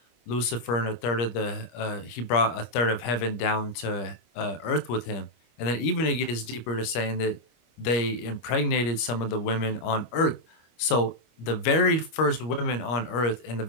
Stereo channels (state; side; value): late; right; 25 ms